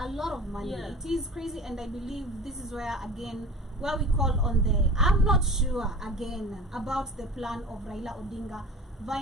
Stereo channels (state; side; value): normal; both; correlation 0.39